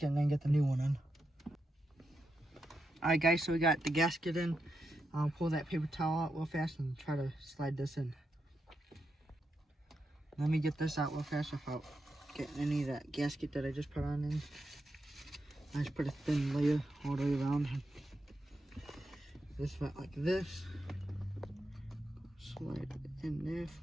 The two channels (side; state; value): both; normal; correlation 0.85